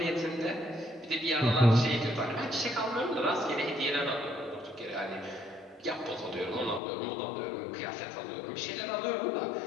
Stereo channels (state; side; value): drops out; right; at 6.8 s